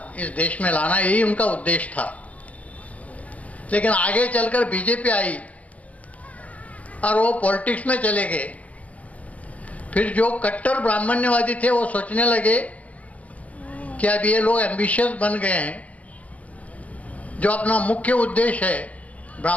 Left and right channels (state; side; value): late; right; 0.068 ms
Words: देश में लाना, यही उनका उद्देश्य था। लेकिन आगे चलकर बीजेपी आई और वो पॉलिटिक्स में चले गए। फिर जो कट्टर ब्राह्मण्यवादी थे वो सोचने लगे कि अब ये लोग एम्बिशियस बन गए हैं, जो अपना मुख्य उद्देश्य है